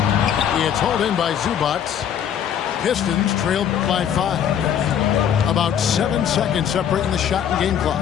It's hauled in by Zubac. Pistons trailed by 5. About 7 seconds separating the shot and game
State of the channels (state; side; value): quieter; right; 9.0 dB